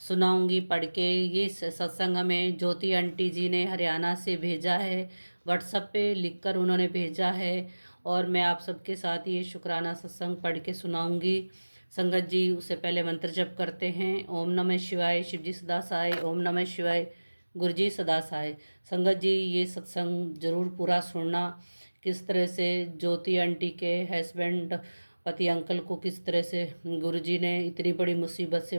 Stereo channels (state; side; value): inverted; both; correlation -1.00